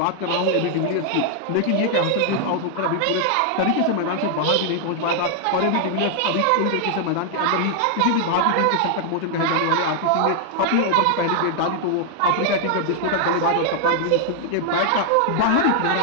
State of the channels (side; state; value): both; different; correlation 0.00